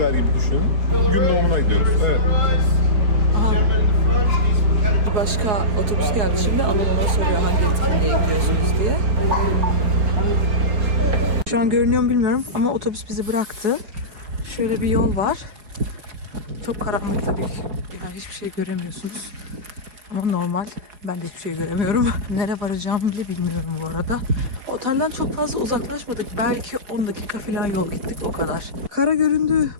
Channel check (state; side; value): late; left; 4.9 ms